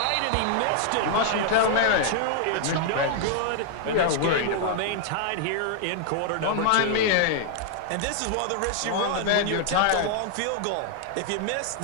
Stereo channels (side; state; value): both; different; correlation 0.00